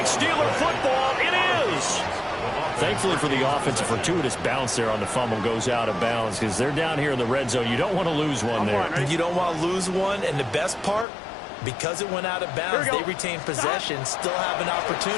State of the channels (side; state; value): right; drops out; at 11.1 s